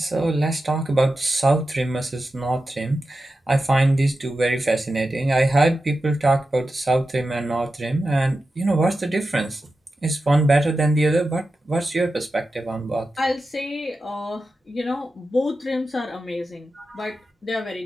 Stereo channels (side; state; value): both; normal; correlation 0.91